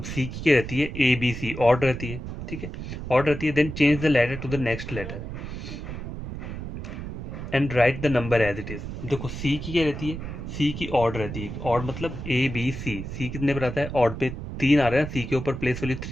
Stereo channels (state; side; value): noise; right; rumble, 7 dB below the sound